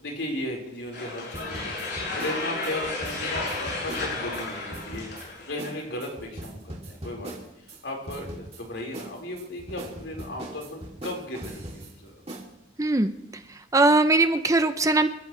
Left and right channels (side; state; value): both; normal; correlation 0.38